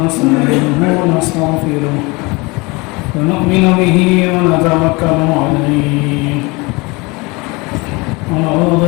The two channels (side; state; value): right; quieter; 25.8 dB